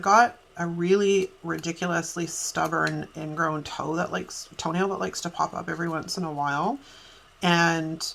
got a really ridiculously stubborn ingrown toenail that likes to pop up every once in a while. And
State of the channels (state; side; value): identical; both; correlation 1.00